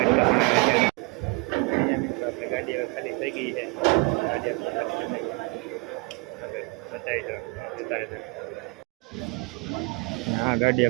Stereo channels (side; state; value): left; quieter; 30.4 dB